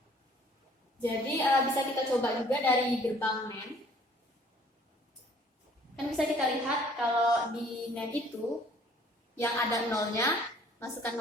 Jadi bisa kita coba juga dari gerbang NAND. Kan bisa kita lihat kalau di NAND itu yang ada nolnya, masukkan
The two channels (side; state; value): both; normal; correlation 0.57